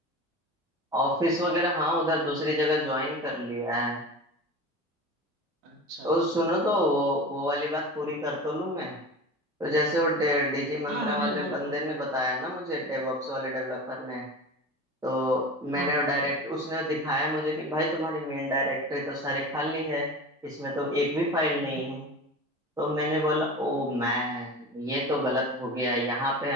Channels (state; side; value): normal; both; correlation 0.32